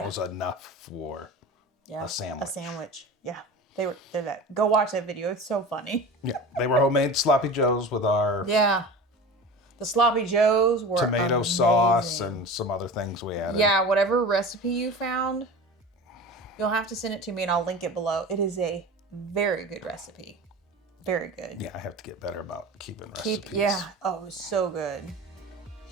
was enough for a sandwich. A sandwich. Yeah. They're that. Go watch that video. It's so funny. Yeah, they were homemade Sloppy Joe's with our The Sloppy Joes were tomato amazing. sauce and some other things we added. Yeah, whatever recipe you found, you'll have to send it to me and I'll link it below. It is a very good recipe. Very good. Yeah, I have to get better about keeping recipes. Oh, it was so good.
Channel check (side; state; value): both; normal; correlation 0.33